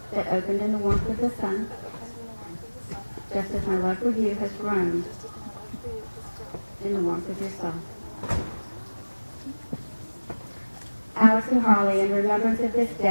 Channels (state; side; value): inverted; both; correlation -1.00